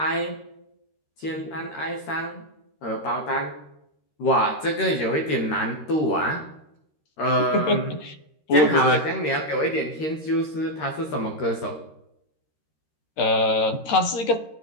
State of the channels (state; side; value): late; right; 13 ms